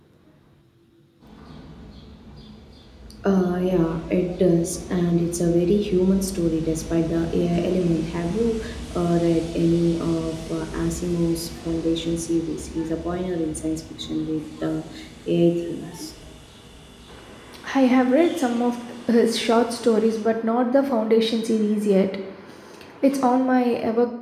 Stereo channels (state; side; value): identical; both; correlation 1.00